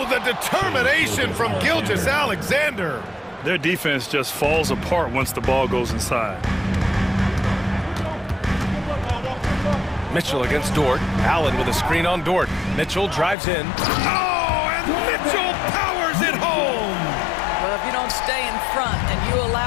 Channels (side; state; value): right; drops out; at 13.4 s